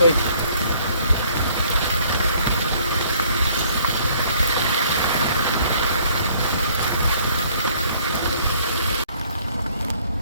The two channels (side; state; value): both; inverted; correlation -0.61